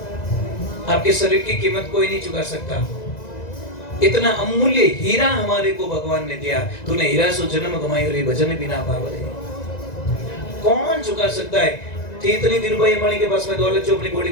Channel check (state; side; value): late; right; 1.9 ms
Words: आपके शरीर की कीमत कोई नहीं चुका सकता। इतना अमूल्य हीरा हमारे को भगवान ने दिया। तूने हीरा सो जन्म कमाई और भजन बिना पावले, कौन चुका सकता है? थी इतनी धीरूभाई अंबानी के पास में दौलत जो अपनी बॉडी